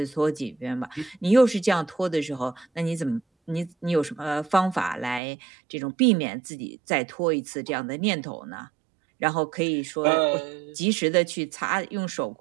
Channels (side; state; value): left; drops out; at 5.2 s